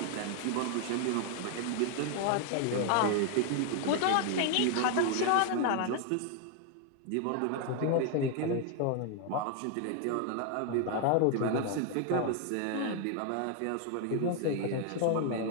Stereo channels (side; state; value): both; different; correlation 0.00